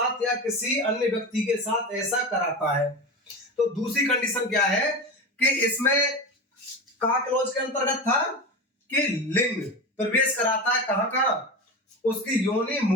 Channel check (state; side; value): normal; both; correlation 0.25